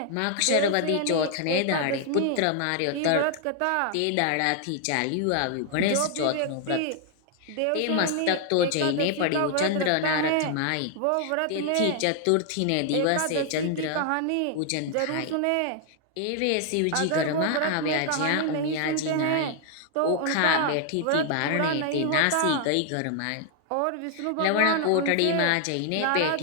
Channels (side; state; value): both; different; correlation 0.00